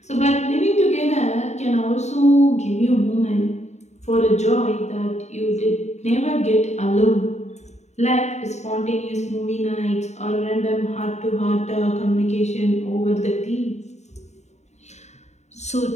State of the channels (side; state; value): right; late; 0.33 ms